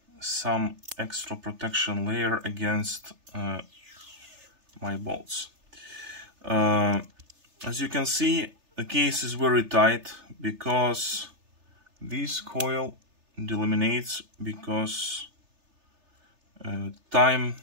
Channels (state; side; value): late; left; 3.3 ms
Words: some extra protection layer against my bolts. As you can see, the case is very tight because this coil delaminates, because time